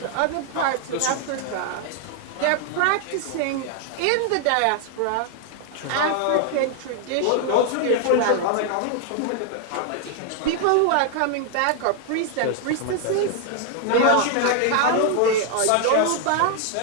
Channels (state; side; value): different; both; correlation 0.00